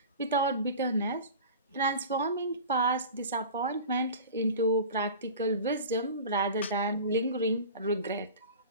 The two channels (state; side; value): inverted; both; correlation -0.36